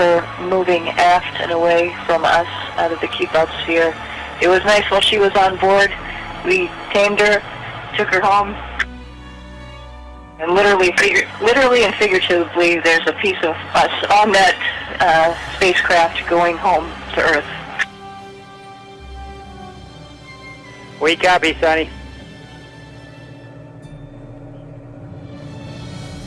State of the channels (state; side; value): identical; both; correlation 1.00